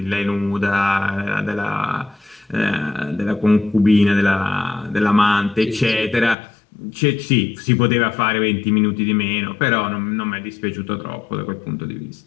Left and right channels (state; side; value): drops out; right; at 6.4 s